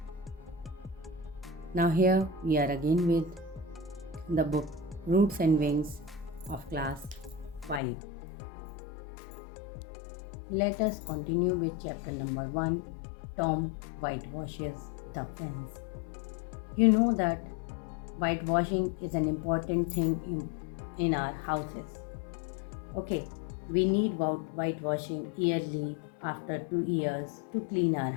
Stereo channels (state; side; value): drops out; right; at 7.8 s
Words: Now, here we are again with the book Roots and Wings of class 5. Let us continue with chapter number 1, Tom Whitewashes the Fence. You know that whitewashing is an important thing in our houses. Okay, we need whitewashing yearly after 2 years to clean our